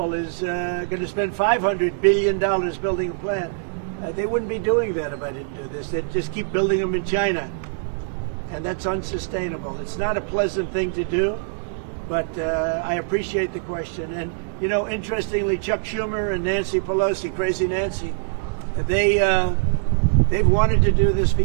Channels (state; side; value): silent; left; digital silence